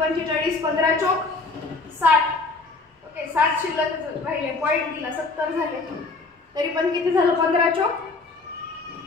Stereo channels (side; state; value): right; quieter; 3.6 dB